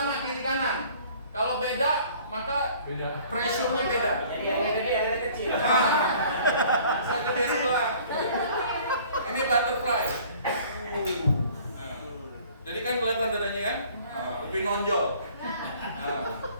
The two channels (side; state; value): both; inverted; correlation -0.52